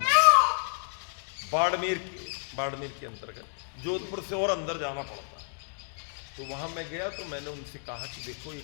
बाड़मेर के अंतर्गत, जोधपुर से और अंदर जाना पड़ता है। तो वहाँ मैं गया तो मैंने उनसे कहा कि देखो ये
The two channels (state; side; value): silent; right; digital silence